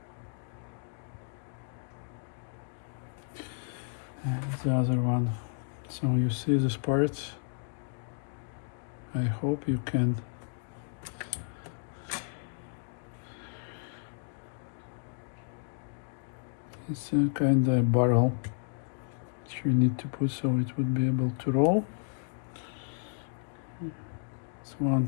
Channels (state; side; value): silent; right; digital silence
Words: And the other one. So you see this part. I hope you can it's a kind of barrel that you need to put so it would be able to roll. This one